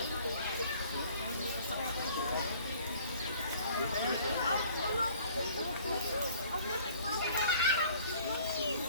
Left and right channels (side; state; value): both; inverted; correlation -0.53